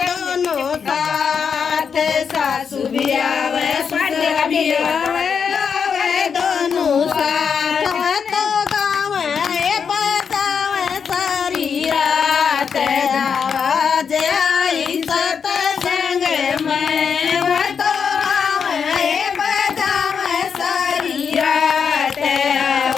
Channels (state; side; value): quieter; right; 6.5 dB